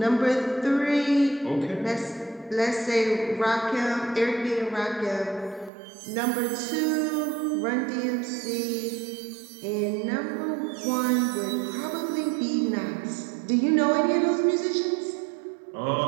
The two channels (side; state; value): left; drops out; at 5.7 s